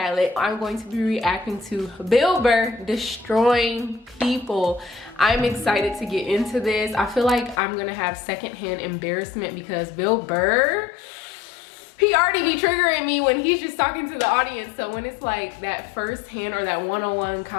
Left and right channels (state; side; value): drops out; right; at 7.6 s